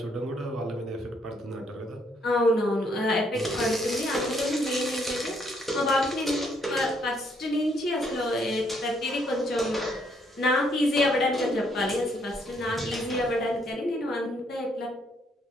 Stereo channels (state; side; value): normal; both; correlation 0.71